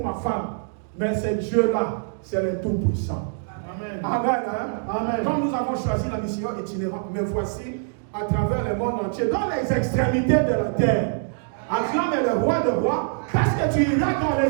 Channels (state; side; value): silent; left; digital silence